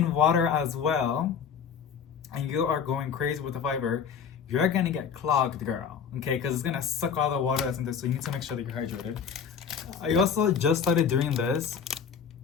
water as well, and you are going crazy with the fiber, you're gonna get clogged, girl, okay? Because it's gonna suck all the water that's in there, so you need to make sure that you're hydrated. I also just started doing this.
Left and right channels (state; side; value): quieter; right; 7.0 dB